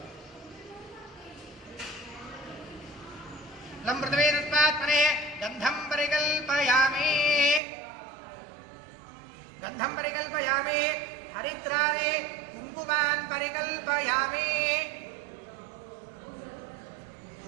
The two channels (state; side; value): drops out; left; at 7.6 s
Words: लं पृथिवी तत्त्वात्मने गन्धं परिकल्पयामि हरिद्राणि कुङ्कुमान् परिकल्पयामि